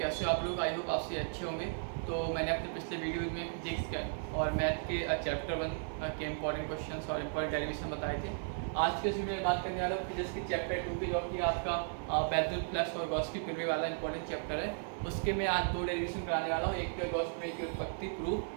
हो आप लोग। आई होप आपसे अच्छे होंगे। तो मैंने अपने पिछले वीडियो में फिजिक्स का और मैथ के चैप्टर 1 के इंपॉर्टेंट क्वेश्चंस और इंपॉर्टेंट डेरिवेशन बताए थे। आज के इस वीडियो में बात करने वाला हूँ फिजिक्स के चैप्टर 2 की, जो कि आपका बेथेल प्लस और गॉस की प्रमेय वाला इंपॉर्टेंट चैप्टर है। उसके मैं आज 2 डेरिवेशन कराने वाला हूँ। एक तो गॉस प्रमेय की उत्पत्ति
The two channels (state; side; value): silent; left; 54 dB below the other